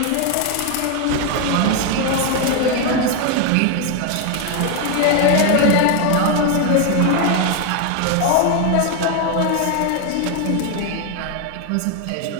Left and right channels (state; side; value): different; both; correlation 0.01